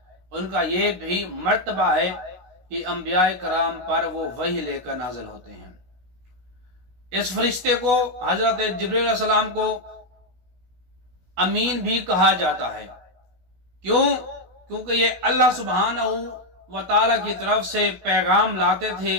ان کا یہ بھی مرتبہ ہے کہ انبیاء کرام پر وہ وحی لے کر نازل ہوتے ہیں۔ اس فرشتے کو حضرت جبریل علیہ السلام کو امین بھی کہا جاتا ہے۔ کیونکہ یہ اللہ سبحانہ و تعالی کی طرف سے پیغام لاتے تھے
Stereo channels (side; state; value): left; late; 16 ms